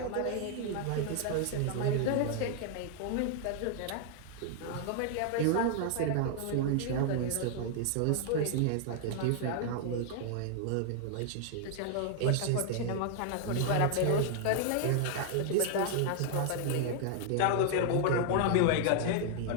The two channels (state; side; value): different; both; correlation 0.00